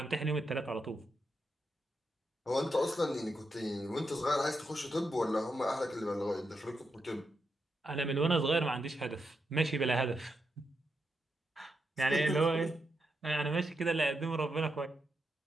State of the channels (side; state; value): both; normal; correlation 0.84